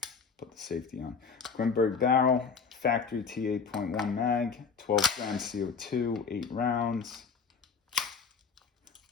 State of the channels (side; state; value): right; quieter; 5.6 dB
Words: put the safety on. Grimburg barrel, factory T8.1 mag, 12 grams CO2, 8 rounds.